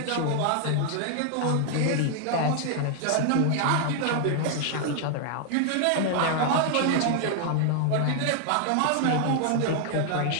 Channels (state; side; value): different; both; correlation 0.00